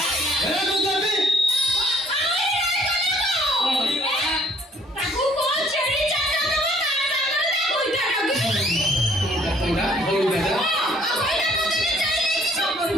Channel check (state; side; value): normal; both; correlation 0.60